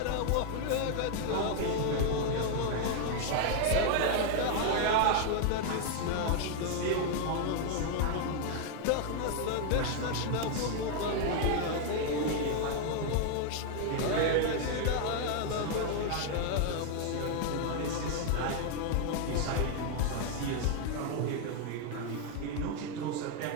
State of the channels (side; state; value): both; different; correlation 0.00